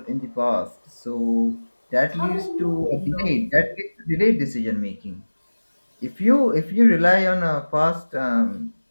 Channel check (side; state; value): both; inverted; correlation -1.00